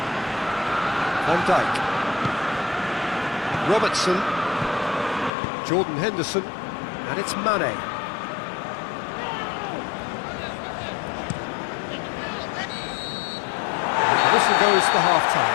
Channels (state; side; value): drops out; right; at 5.3 s